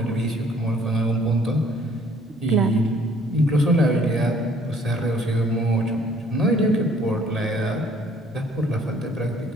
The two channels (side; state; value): both; normal; correlation 0.59